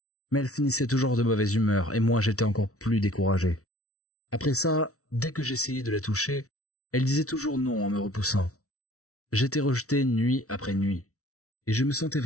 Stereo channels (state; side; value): late; right; 0.64 ms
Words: Mais elle finissait toujours de mauvaise humeur, et moi j'étais encore plus découragé. Après ça, dès que j'essayais de la toucher, elle disait toujours non en me repoussant. J'étais rejeté nuit après nuit, et je me sentais